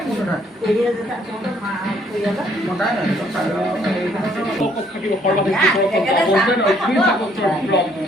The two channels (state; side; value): normal; both; correlation 0.65